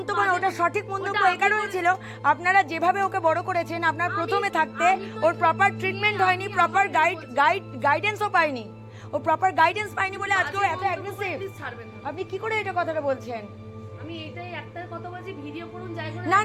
না, ওটা সঠিক মন্তব্য ওটা এই কারণে ছিল, আপনারা যেভাবে ওকে বড় করেছেন, আপনার প্রথমে থাকতে ওর প্রপার ট্রিটমেন্ট হয়নি, প্রপার গাইডেন্সও পায়নি, ও প্রপার গাইডেন্স পায়নি বলে আজকে ও এত অ্যাগ্রেসিভ। প্লিজ ছাড়বেন না। আপনি কি করে এটা কথাটা বলছেন? আমি এটাই একটা কথা বলছি, ভিডিও করুন যাই করুন। না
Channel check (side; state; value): both; identical; correlation 1.00